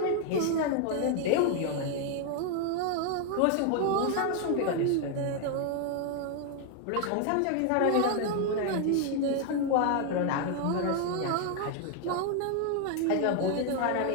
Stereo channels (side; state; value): both; different; correlation 0.00